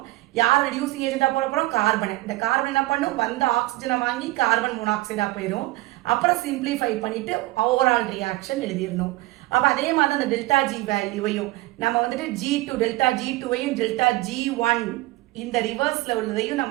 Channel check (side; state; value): left; quieter; 19.3 dB